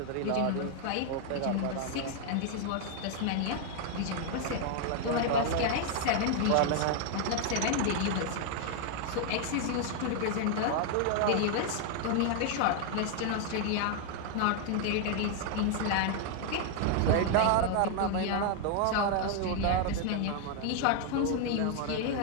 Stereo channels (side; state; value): both; different; correlation 0.00